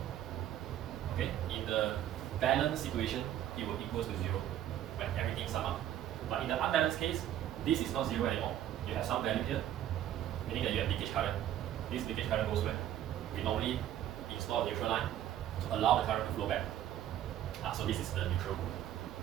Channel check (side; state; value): left; quieter; 11.7 dB